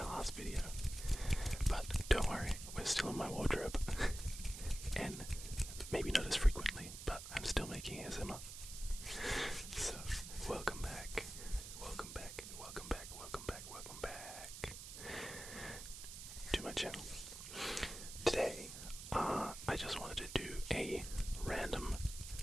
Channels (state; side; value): noise; right; hiss, 10 dB below the sound